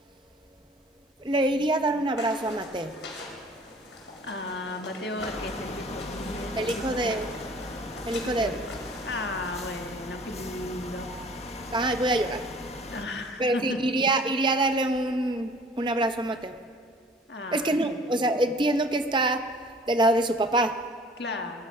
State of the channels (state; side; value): normal; both; correlation 0.50